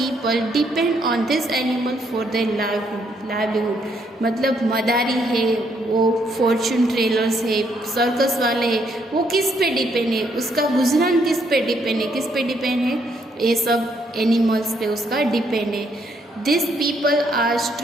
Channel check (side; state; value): both; normal; correlation 0.72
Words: depend on this animal for their livelihood. मतलब मदारी है, वो फॉर्चून टेलर्स है, सर्कस वाले हैं, वो किस पे डिपेंड है, उसका गुजरान किस पे डिपेंड है, ये सब एनिमल्स पे उसका डिपेंड है. This people are